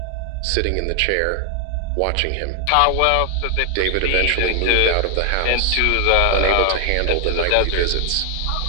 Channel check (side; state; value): both; different; correlation 0.00